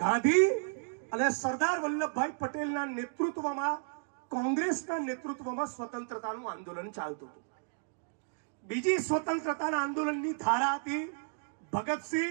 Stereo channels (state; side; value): silent; left; digital silence